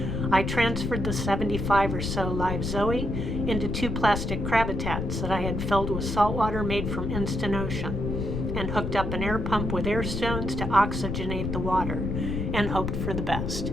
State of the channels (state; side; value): noise; left; rumble, 2 dB below the sound